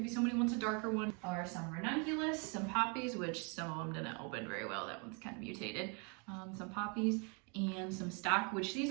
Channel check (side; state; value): left; quieter; 34.8 dB